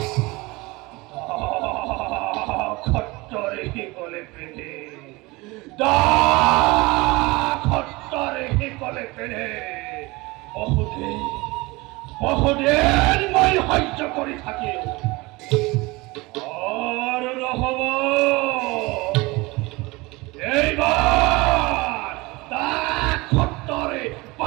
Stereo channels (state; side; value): quieter; left; 23.2 dB